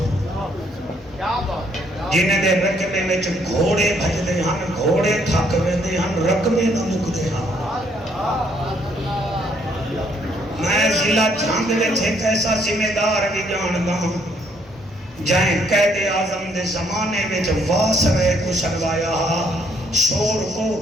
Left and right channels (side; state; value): both; normal; correlation 0.68